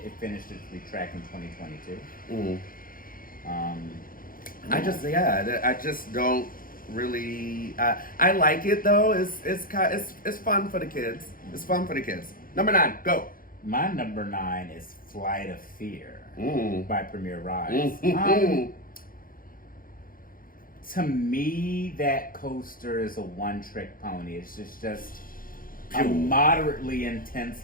finished its retrack in 2022. I just don't really. I like it though. It's fun for the kids. It's fun for the kids. Number 9, go. My number 9 is Flight of Fear by Premier Rides. To me, that coaster is a one-trick pony. It's just a moderately intense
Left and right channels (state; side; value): late; right; 0.41 ms